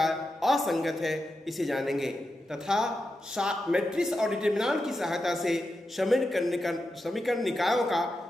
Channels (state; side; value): normal; both; correlation 0.88